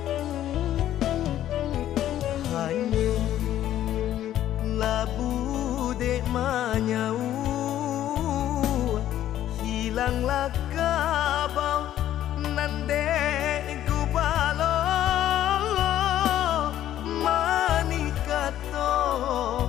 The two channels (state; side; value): quieter; right; 12.2 dB